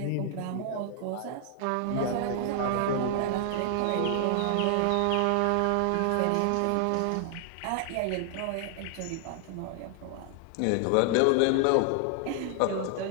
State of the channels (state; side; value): different; both; correlation 0.00